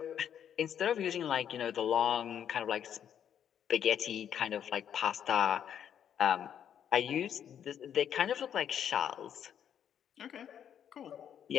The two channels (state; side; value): quieter; right; 9.2 dB